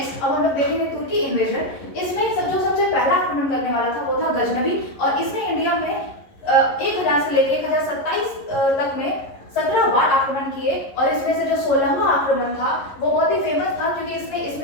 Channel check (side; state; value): right; late; 11 ms